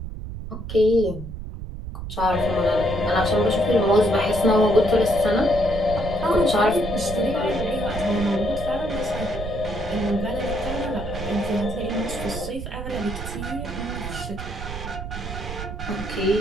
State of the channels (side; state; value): right; noise; rumble, 8 dB below the sound